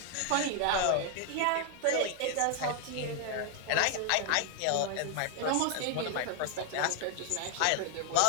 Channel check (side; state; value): both; different; correlation 0.00